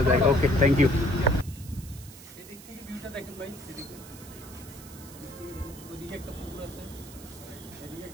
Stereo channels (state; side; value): noise; right; hiss, 18 dB below the sound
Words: জায়গা। ওকে, থ্যাংক ইউ। এদিক থেকে ভিউটা দেখেন ভাই, এদিকে ওদিকে একটা পুকুর আছে, এদিকে